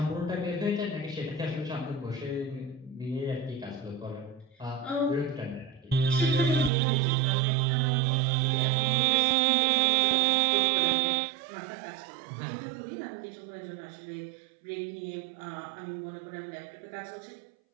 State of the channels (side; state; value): left; drops out; at 6.7 s